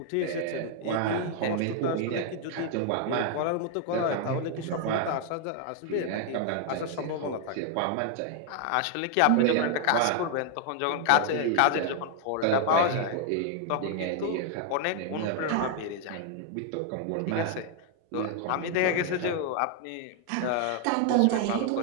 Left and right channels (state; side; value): different; both; correlation 0.00